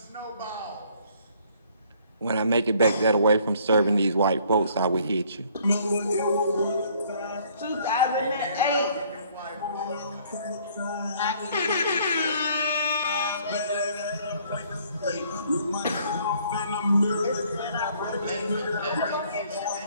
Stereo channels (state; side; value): inverted; both; correlation -0.61